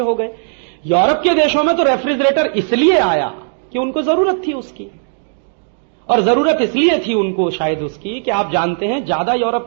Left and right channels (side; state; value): left; silent; digital silence